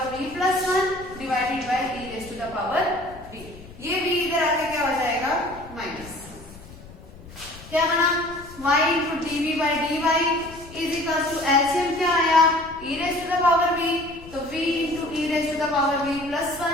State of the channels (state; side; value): noise; left; rumble, 18 dB below the sound